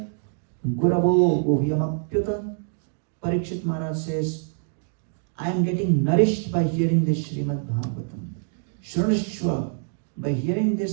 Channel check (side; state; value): left; silent; digital silence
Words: guravo guhyam apyuta. Parikshit Maharaj says, I am getting nourished by hearing this Srimad Bhagavatam. Shrunashva, by hearing